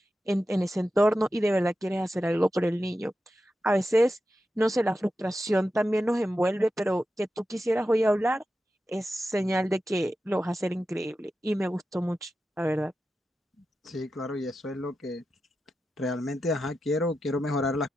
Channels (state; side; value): normal; both; correlation 0.91